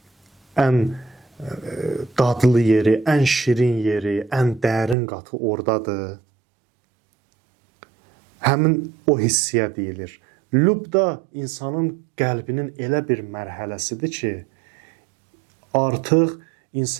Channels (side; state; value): left; drops out; at 5.0 s